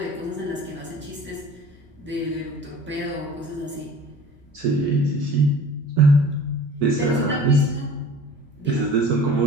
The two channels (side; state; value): both; normal; correlation 0.44